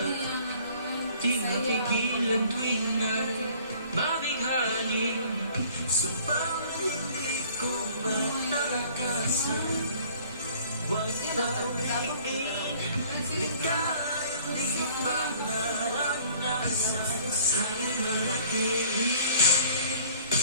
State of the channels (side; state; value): both; inverted; correlation -0.52